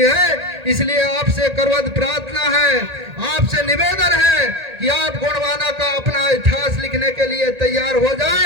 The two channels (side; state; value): left; late; 1.8 ms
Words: है। इसलिए आपसे करवत प्रार्थना है, आपसे निवेदन है कि आप गोंडवाना का अपना इतिहास लिखने के लिए तैयार हो